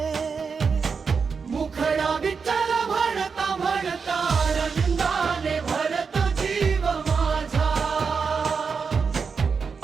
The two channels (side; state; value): left; quieter; 5.5 dB